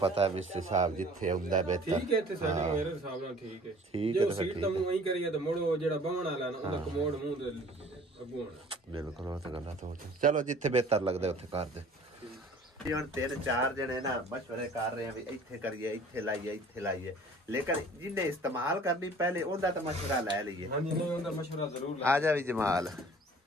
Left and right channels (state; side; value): normal; both; correlation 0.50